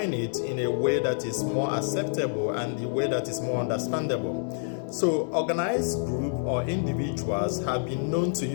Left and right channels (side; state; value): right; silent; digital silence